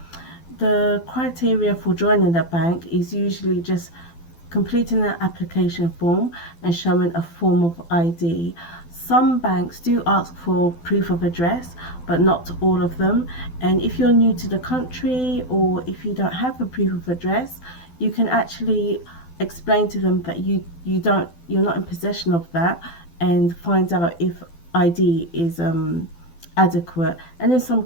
The criteria for joining a bank is usually just completing an application form and showing a form of ID. Some banks do ask for proof of address, but not all of them. And if you're new to the country or if you don't have a proof of address, you can actually explain to them that you're not in possession of that and find out if ID is adequate. And in some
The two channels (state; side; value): late; right; 12 ms